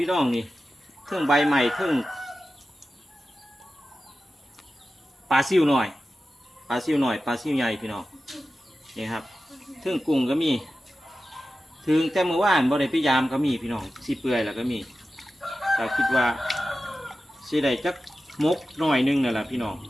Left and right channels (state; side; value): normal; both; correlation 0.93